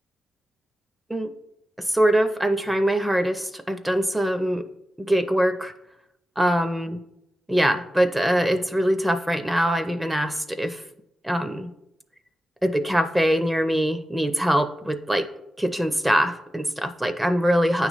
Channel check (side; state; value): both; normal; correlation 0.93